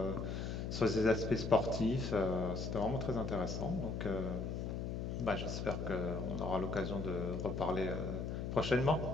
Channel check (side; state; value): left; noise; hum, 3 dB below the sound